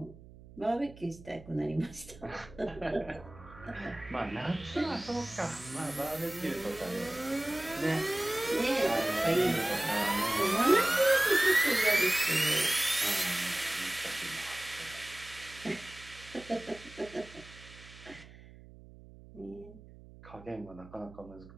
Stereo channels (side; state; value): right; noise; hum, 19 dB below the sound